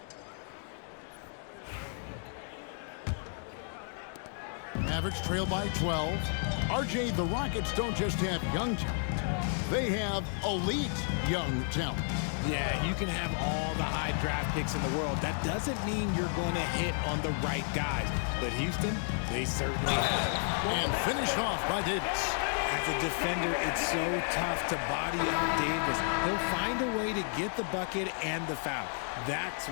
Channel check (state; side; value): silent; right; 56 dB below the other